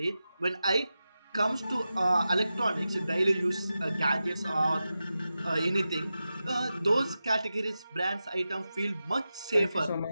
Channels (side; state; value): both; inverted; correlation -0.92